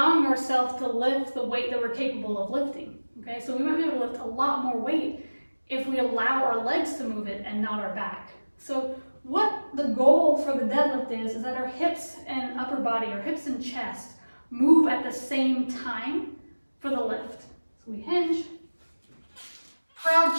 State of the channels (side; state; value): both; inverted; correlation -1.00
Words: ourselves to lift the weight that we're capable of lifting, okay? So we might be able to lift a lot more weight if we allow our legs to move it and not our back. So what the goal for the deadlift is that our hips and upper body, our hips and chest, move at the same time for the lift. So we hinge, proud